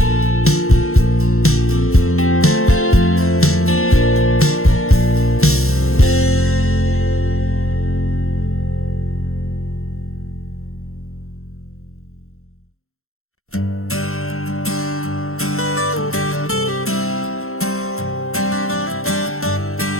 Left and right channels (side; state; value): right; late; 0.62 ms